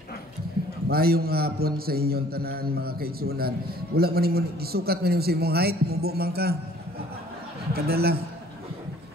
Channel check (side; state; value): both; normal; correlation 0.55